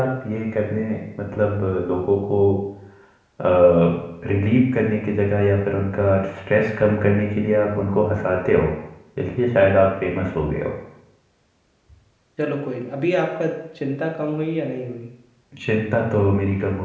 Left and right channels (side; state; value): both; identical; correlation 1.00